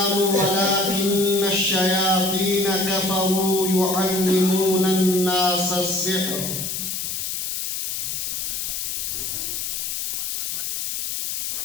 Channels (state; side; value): noise; left; hiss, 3 dB below the sound